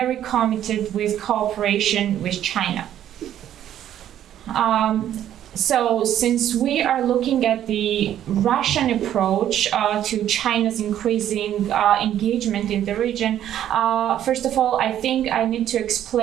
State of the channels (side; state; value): left; quieter; 11.2 dB